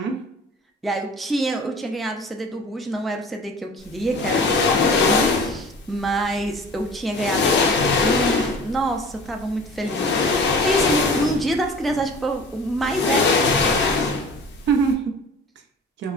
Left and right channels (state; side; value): normal; both; correlation 0.42